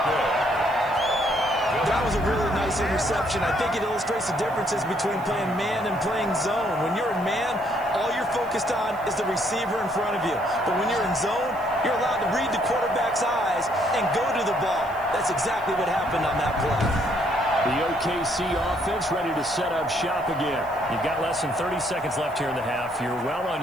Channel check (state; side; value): noise; right; hiss, 25 dB below the sound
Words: That was a really nice interception. I think it illustrates the differences between playing man and playing zone. When you're in man, all you're focused on is the receiver in front of you. But when you're in zone, you're allowed to read the quarterback's eyes and go to the ball. That's exactly what happened on that play. The OKC offense ready to set up shop again. You've got less than 30 seconds left here in the half. You're well on